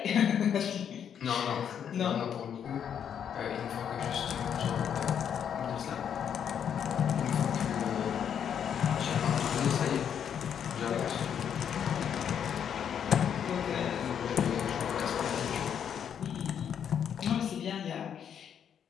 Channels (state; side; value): quieter; right; 8.4 dB